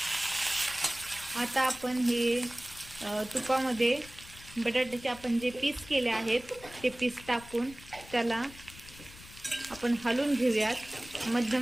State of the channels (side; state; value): left; noise; rumble, 19 dB below the sound